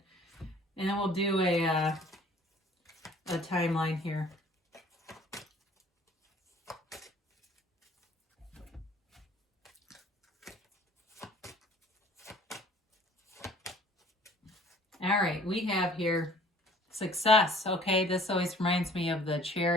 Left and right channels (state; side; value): normal; both; correlation 0.52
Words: And then we'll do a timeline here. All right, we have here success. Okay, this always reminds me of the